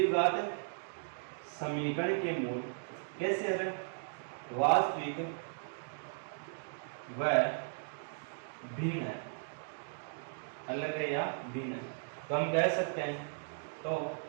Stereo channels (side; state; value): left; silent; digital silence